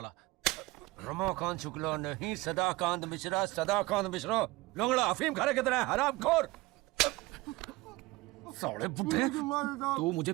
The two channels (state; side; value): quieter; left; 21.1 dB